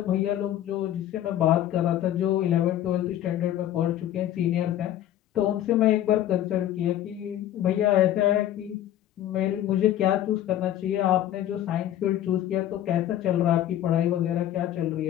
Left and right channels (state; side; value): quieter; right; 12.1 dB